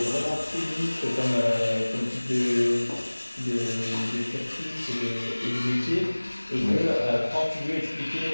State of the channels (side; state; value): both; inverted; correlation -1.00